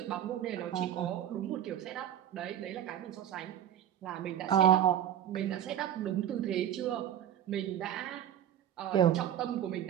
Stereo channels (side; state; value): left; quieter; 10.7 dB